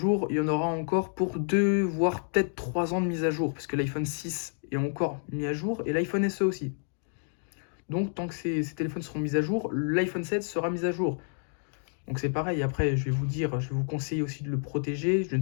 il y en aura encore pour 2, voire peut-être 3 ans de mise à jour, parce que l'iPhone 6 est encore mis à jour, et l'iPhone SE aussi. Donc, tant que ces téléphones seront mis à jour, l'iPhone 7 sera mis à jour. Donc c'est pareil, après, je vais vous conseiller aussi de le protéger. Je ne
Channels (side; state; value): right; silent; digital silence